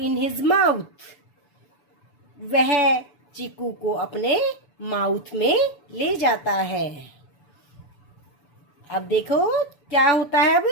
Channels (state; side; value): late; right; 7.0 ms